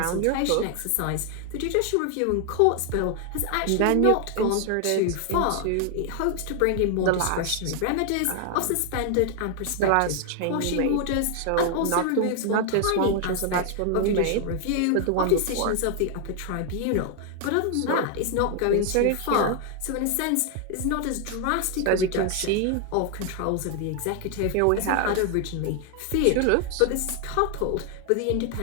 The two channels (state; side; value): different; both; correlation 0.00